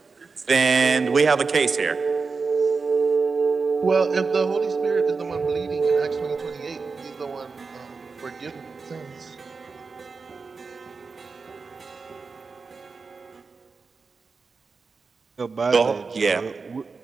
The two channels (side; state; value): left; quieter; 4.6 dB